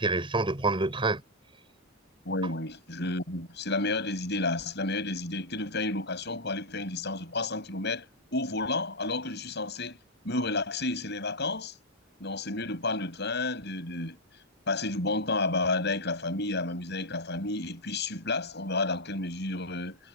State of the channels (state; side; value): normal; both; correlation -0.01